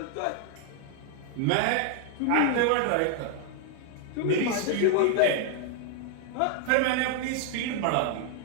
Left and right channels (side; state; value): both; different; correlation 0.00